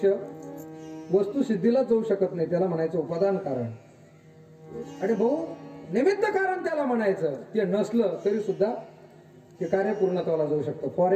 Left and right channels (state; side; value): identical; both; correlation 1.00